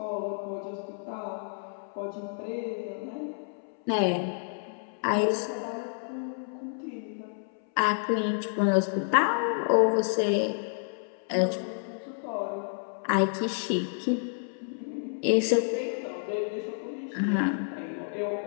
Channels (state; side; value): silent; right; 58 dB below the other